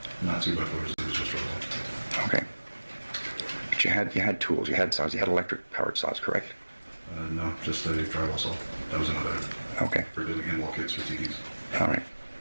Not 2x4s, it was just drywall. Okay. But you had tools, you had saws, you had electric powered saws, correct? No, just a drywall saw. That was another. Okay. For doing in-wall kits for TVs. All right.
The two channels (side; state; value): both; inverted; correlation -1.00